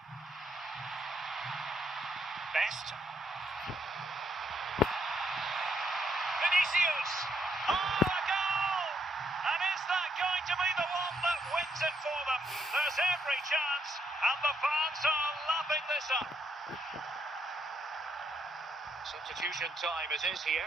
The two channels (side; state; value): both; normal; correlation 0.75